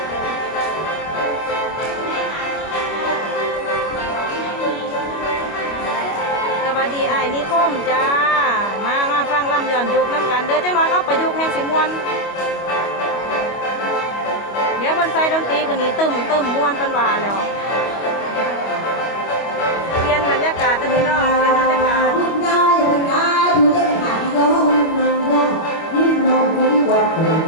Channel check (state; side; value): late; right; 25 ms